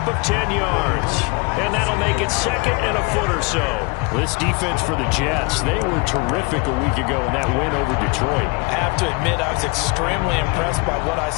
of 10 yards. And that'll make it second and a foot or so. This defense for the Jets, they were terrific a week ago in that win over Detroit. I have to admit, I was extremely impressed by what I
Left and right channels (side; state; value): right; quieter; 28.9 dB